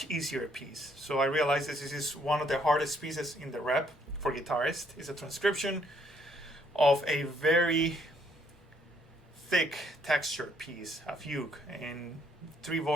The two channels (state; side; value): normal; both; correlation 0.68